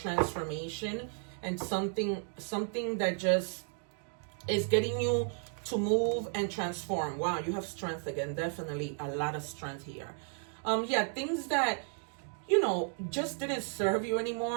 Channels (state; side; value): silent; left; 55 dB below the other